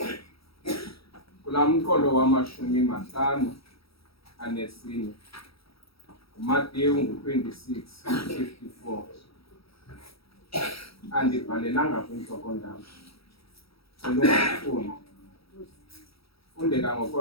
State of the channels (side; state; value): right; late; 0.76 ms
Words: kulaa mqolo wama-54 uMateyu 26:54. Andibhalelanga kwintloko-ndaba, ungafuni fundeka